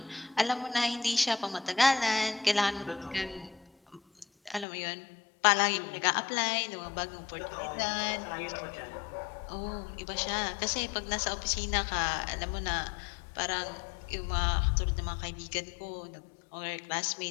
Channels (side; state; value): right; drops out; at 4.7 s